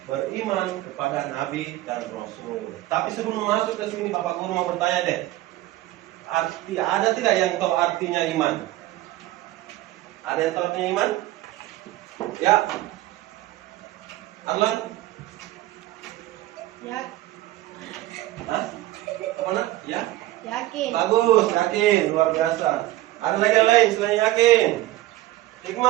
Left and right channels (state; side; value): quieter; left; 16.4 dB